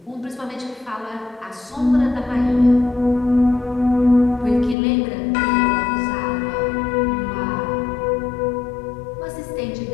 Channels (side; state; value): right; drops out; at 4.8 s